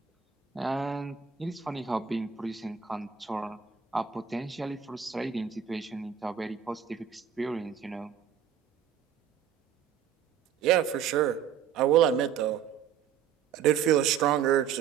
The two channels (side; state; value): left; quieter; 8.3 dB